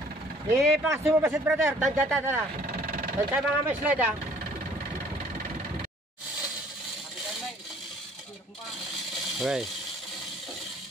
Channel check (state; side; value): normal; both; correlation 0.56